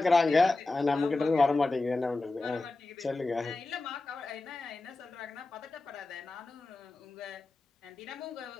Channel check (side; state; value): right; quieter; 3.3 dB